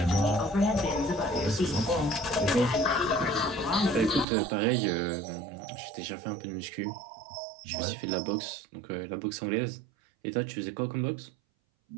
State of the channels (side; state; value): left; drops out; at 4.2 s